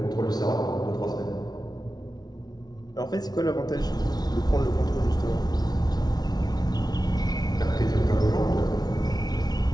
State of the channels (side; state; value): right; late; 0.19 ms